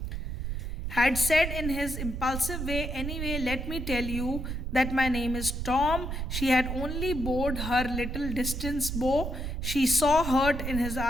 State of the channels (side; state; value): right; noise; rumble, 4 dB below the sound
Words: had said in his impulsive way, "Anyway, let me tell you that my name is Tom." She had only bowed her little distance bow. She saw hurt in his